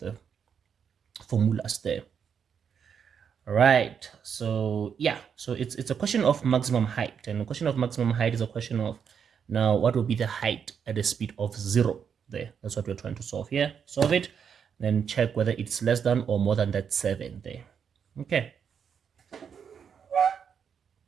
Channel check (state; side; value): quieter; left; 7.3 dB